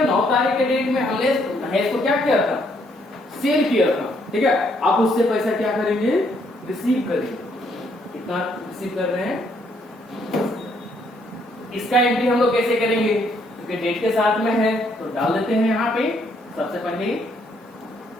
9 तारीख के डेट में हमने महेश को क्या किया था? सेल किया था। ठीक है, आप उससे पैसा क्या करेंगे? रिसीव करेंगे। कितना रिसीव कर रहे हैं? इसका एंट्री हम लोग कैसे करेंगे? क्योंकि डेट के साथ में है तो डाल देते हैं यहाँ पे सबसे पहले।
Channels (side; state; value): both; normal; correlation 0.70